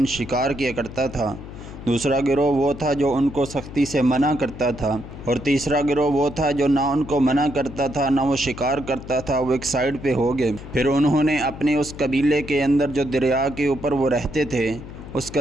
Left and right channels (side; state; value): left; noise; hum, 13 dB below the sound